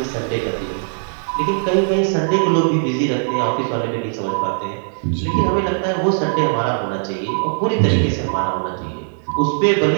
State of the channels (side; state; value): left; silent; 63 dB below the other